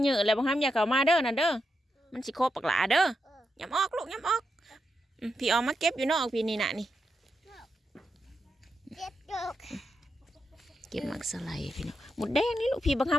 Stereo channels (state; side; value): normal; both; correlation 0.85